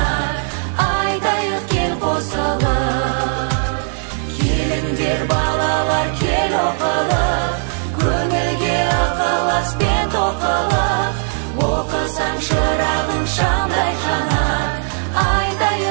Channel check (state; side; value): silent; left; digital silence